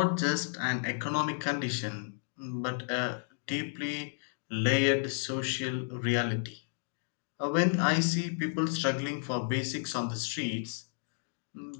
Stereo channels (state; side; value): silent; right; digital silence